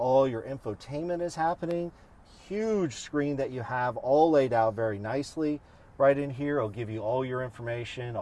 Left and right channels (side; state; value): both; identical; correlation 1.00